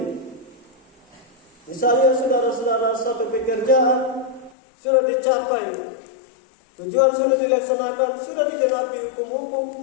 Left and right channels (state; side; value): drops out; right; at 4.5 s